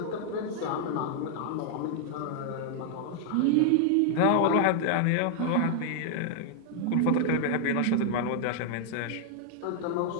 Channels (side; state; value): both; different; correlation 0.00